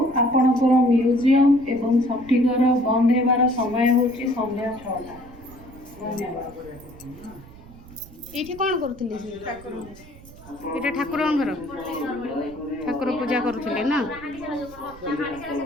ଆପଣଙ୍କର ମ୍ୟୁଜିୟମ ଏବଂ ସଠିକର ବନ୍ଦ ହେବାର ସମୟ ହେଉଛି ସନ୍ଧ୍ୟା 6ଟା। ଧନ୍ୟବାଦ। ଏଇଠି କ'ଣ କରୁଥିଲେ? ଏଇଟା ଠାକୁରଙ୍କ ଘର, ଠାକୁର ପୂଜା କରୁଥିଲେ ନା?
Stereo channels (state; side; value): noise; right; rumble, 20 dB below the sound